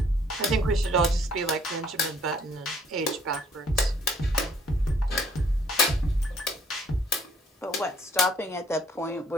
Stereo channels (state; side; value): normal; both; correlation 0.62